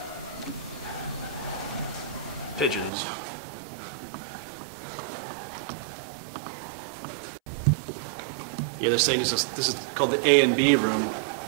Pigeons. Yeah, they're saying this is called the A and B room.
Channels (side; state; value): left; drops out; at 2.9 s